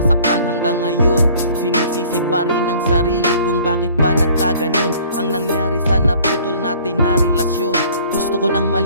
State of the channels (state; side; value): inverted; both; correlation -0.53